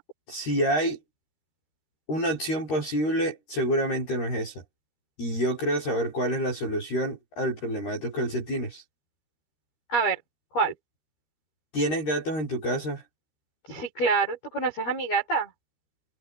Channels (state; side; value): late; right; 13 ms